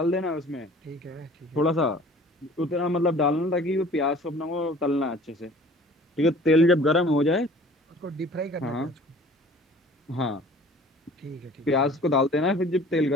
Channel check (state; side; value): normal; both; correlation 0.48